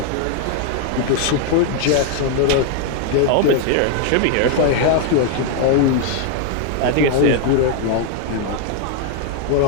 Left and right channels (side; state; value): both; different; correlation 0.00